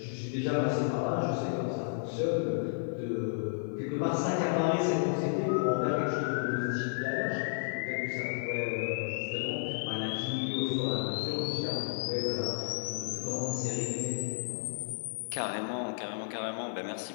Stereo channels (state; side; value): silent; right; 56 dB below the other